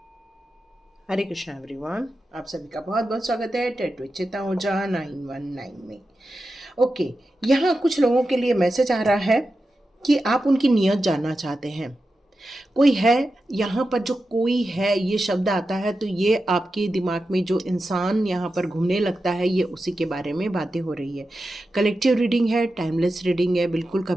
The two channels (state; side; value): normal; both; correlation 0.91